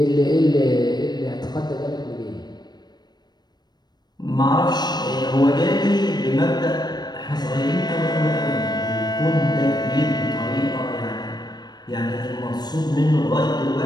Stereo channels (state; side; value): late; right; 0.20 ms